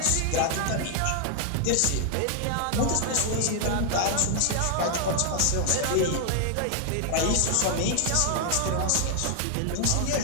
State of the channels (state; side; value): different; both; correlation 0.00